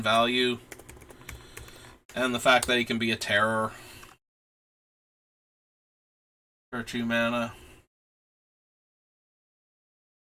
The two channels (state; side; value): identical; both; correlation 1.00